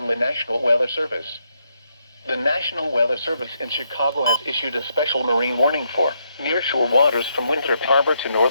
the National Weather Service. The National Weather Service in Chicago has issued a special marine warning for nearshore waters from Winthrop Harbor to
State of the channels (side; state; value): both; inverted; correlation -0.78